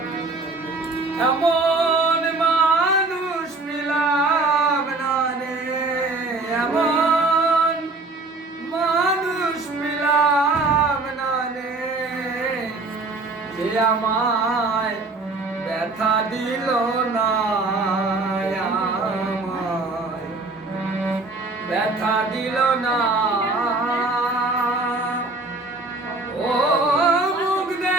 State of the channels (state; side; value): quieter; left; 3.3 dB